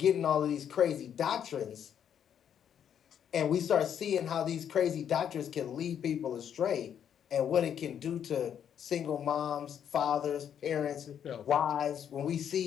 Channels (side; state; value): right; quieter; 8.9 dB